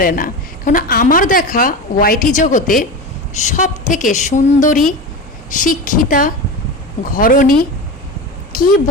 না। কারণ আমার দেখা ওয়াইটি জগতে সব থেকে সুন্দরী, শিক্ষিতা, ঘরণী, কি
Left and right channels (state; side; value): normal; both; correlation 0.25